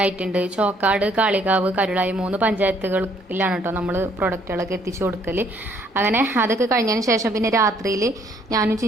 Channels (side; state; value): both; normal; correlation 0.65